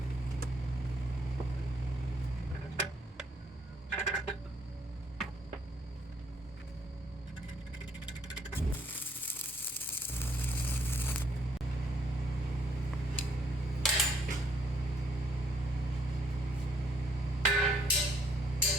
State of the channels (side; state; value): both; normal; correlation 0.67